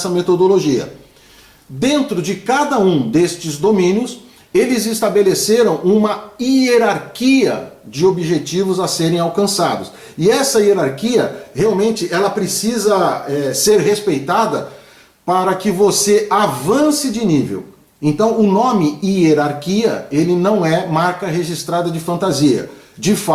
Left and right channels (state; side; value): identical; both; correlation 1.00